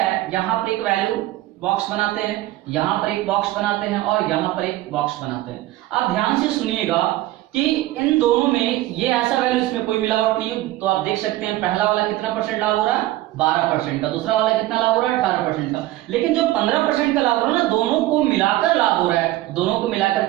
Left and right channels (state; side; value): quieter; left; 16.4 dB